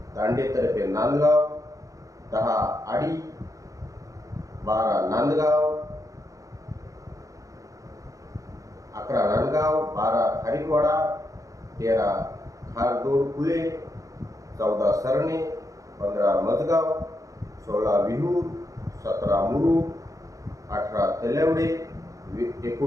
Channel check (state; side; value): late; left; 0.16 ms